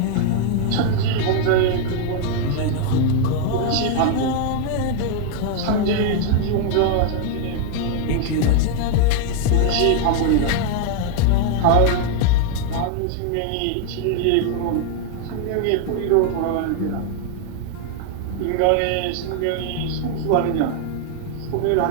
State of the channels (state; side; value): different; both; correlation 0.00